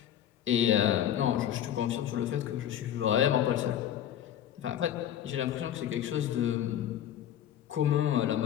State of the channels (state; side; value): quieter; right; 10.8 dB